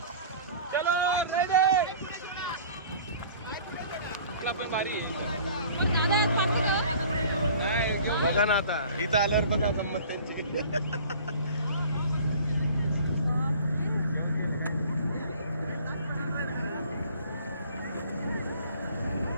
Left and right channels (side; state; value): both; inverted; correlation -0.47